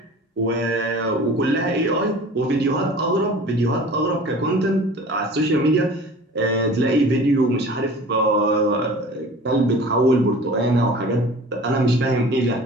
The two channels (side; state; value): both; normal; correlation 0.42